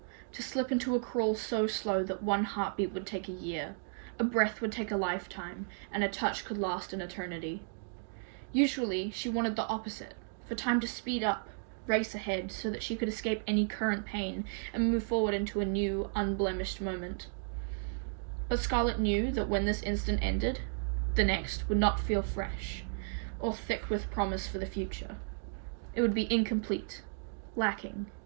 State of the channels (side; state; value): left; silent; digital silence